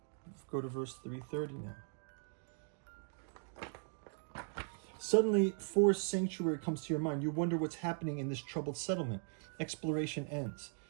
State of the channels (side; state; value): left; silent; 52 dB below the other